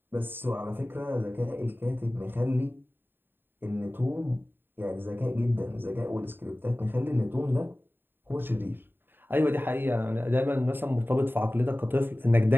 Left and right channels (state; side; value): late; left; 0.097 ms